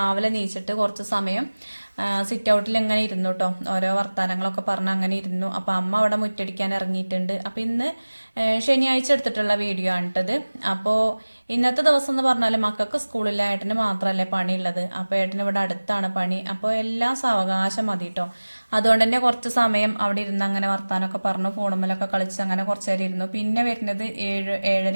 നീച്ചിട്ട് കുറച്ച് സമയം സിറ്റ് ഔട്ടിൽ ഇങ്ങനെ ഇരുന്നു കേട്ടോ. ഓരോ വർത്തമാനങ്ങളൊക്കെ പറഞ്ഞ് അങ്ങനെ ഇരുന്നു. അപ്പോൾ അമ്മ അവിടെ മുറ്റടിക്കാൻ ഇറങ്ങിയിട്ടുണ്ട്. അപ്പോൾ ഇന്ന് ശനിയാഴ്ച എടുത്തിട്ടുള്ള വീഡിയോ ആണ് കേട്ടത്. അപ്പോൾ ഇന്നത്തെ ദിവസം എന്ന് പറഞ്ഞാൽ മക്കൾക്ക് സ്കൂളിൽ ഏട്ടന് മാത്രമല്ലേ പണിയുള്ളത്. അപ്പോൾ ഏട്ടന് ഇവിടെ അടുത്താണ് പണി. അപ്പോൾ എല്ലാം സാവകാശം മതി കേട്ടോ. അതുകൊണ്ട് തന്നെ കുറച്ച് സമയം അവിടെ ഇരുന്ന് അങ്ങനെ വർത്താനമൊക്കെ പറഞ്ഞു ഫോണുമ്മലൊക്കെ കളിച്ച് അങ്ങനെ കുറച്ച് നേരം ഇരുന്നു. പിന്നെ വരുന്നത്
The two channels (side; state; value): both; inverted; correlation -1.00